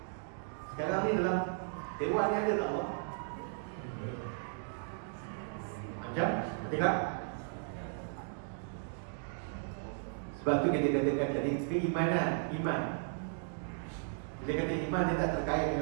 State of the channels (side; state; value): left; silent; digital silence